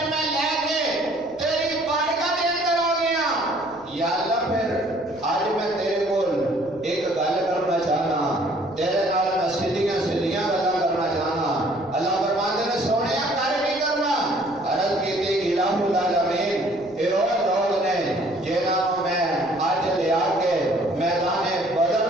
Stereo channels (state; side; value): noise; left; rumble, 26 dB below the sound